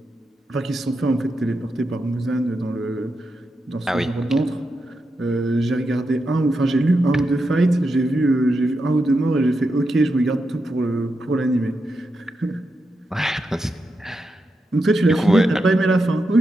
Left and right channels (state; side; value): normal; both; correlation 0.86